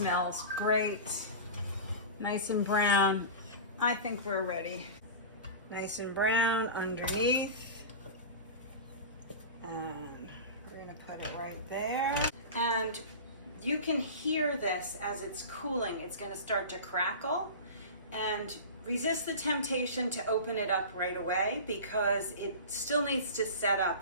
great. Nice and brown. I think we're ready. Nice and brown underneath. And we're gonna put it right there. And you can hear this as it's cooling. It's gonna start to crackle. And resist the temptation to open it up right away because it still needs to set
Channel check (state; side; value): inverted; both; correlation -0.30